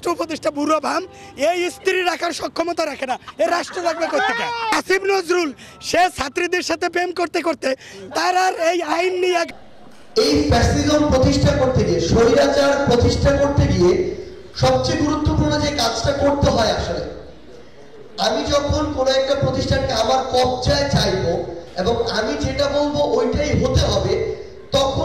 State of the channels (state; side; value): identical; both; correlation 1.00